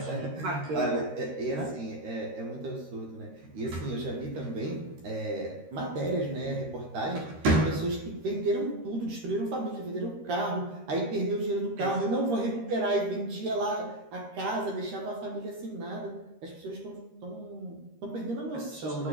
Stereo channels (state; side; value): late; left; 13 ms